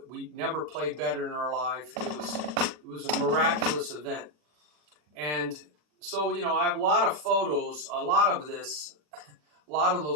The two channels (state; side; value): late; left; 40 ms